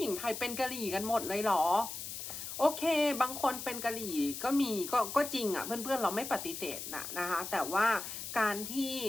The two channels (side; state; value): left; noise; hiss, 7 dB below the sound